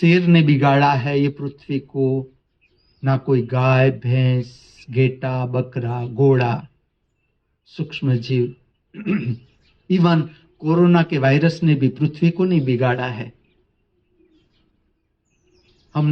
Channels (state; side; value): identical; both; correlation 1.00